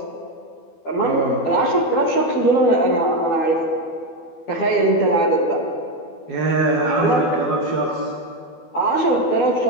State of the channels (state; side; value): late; right; 12 ms